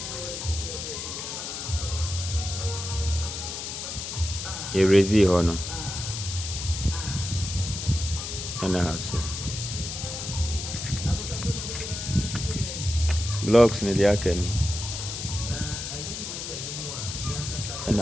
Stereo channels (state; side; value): noise; left; hiss, 6 dB below the sound